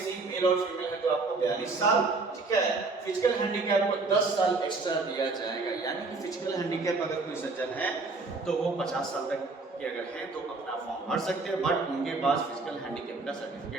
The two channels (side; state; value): left; quieter; 3.7 dB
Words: मेल और फीमेल हैं तो आपको 42 साल। ठीक है, फिजिकल हैंडीकैप को 10 साल एक्स्ट्रा दिया जाएगा, यानी कि फिजिकल हैंडीकैप अगर कोई सज्जन है तो वो 50 साल तक के अगर हैं तो अपना फॉर्म भर सकते हैं, बट उनके पास फिजिकल हैंडीकैप का